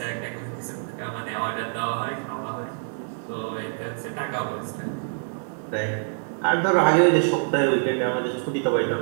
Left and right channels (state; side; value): silent; left; 57 dB below the other